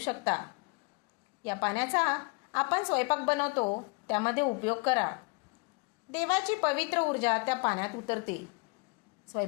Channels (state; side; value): quieter; right; 29.8 dB